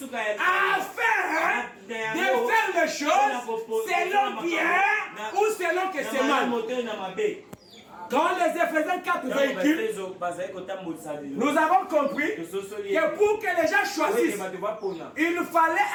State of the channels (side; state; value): both; identical; correlation 1.00